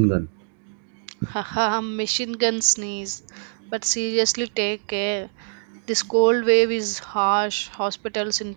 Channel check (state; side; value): silent; left; digital silence